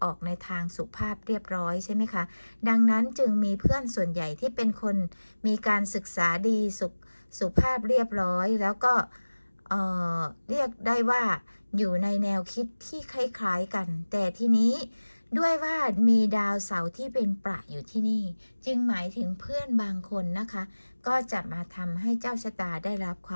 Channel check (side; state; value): both; inverted; correlation -1.00